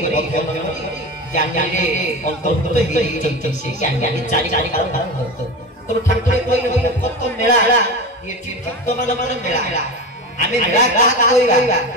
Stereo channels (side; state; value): both; normal; correlation 0.26